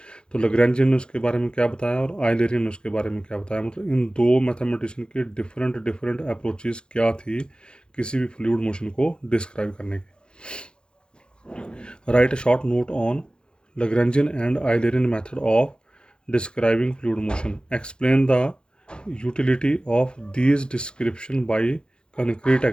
तो लैग्रेंजियन ने उसके बारे में क्या बताया और आइलेरियन ने उसके बारे में क्या बताया. मतलब इन दो मैथमेटिशियन की डिफरेंट डिफरेंट अप्रोचेस क्या थी किसी भी फ्लूइड मोशन को डिस्क्राइब करने की. Write a short note on Lagrangian and Eulerian method of describing fluid motion. Explain the utility of these description by concrete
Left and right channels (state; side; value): late; right; 0.050 ms